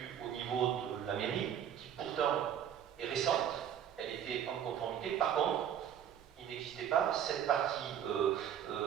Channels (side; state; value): left; quieter; 9.5 dB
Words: au niveau de la mairie, qui pourtant est récente, elle était en conformité. Par contre, il n'existait pas cette partie-là